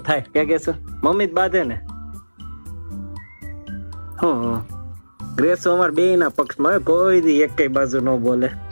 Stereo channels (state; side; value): inverted; both; correlation -1.00